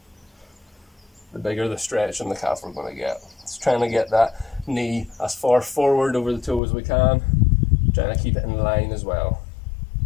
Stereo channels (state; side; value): drops out; right; at 6.6 s